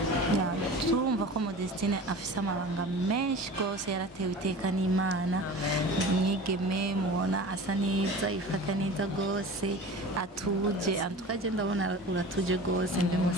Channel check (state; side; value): normal; both; correlation 0.37